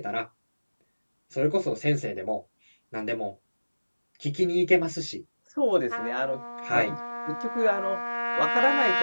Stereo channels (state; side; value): inverted; both; correlation -1.00